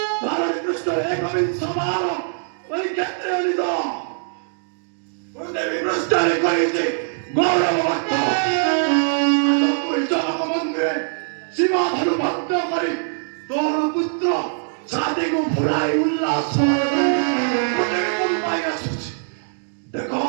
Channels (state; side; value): silent; left; digital silence